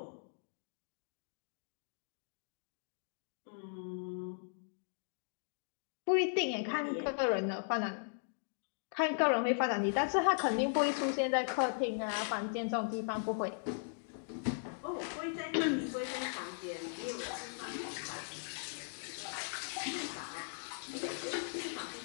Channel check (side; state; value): right; silent; digital silence